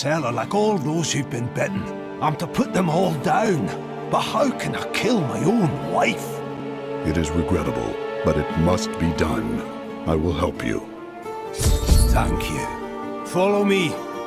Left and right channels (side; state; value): both; identical; correlation 1.00